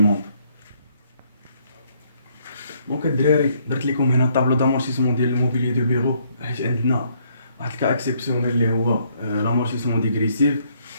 دونك الدراري درت لكم هنا طابلو دامورتيسمون ديال الموبيليي دو بيرو، حيت عندنا واحد الكا اكسيبسيونيل اللي هو لامورتيسمون ديغريسيف.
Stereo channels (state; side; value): inverted; both; correlation -0.69